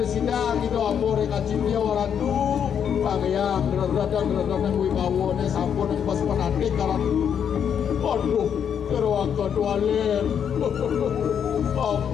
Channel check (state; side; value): quieter; right; 8.1 dB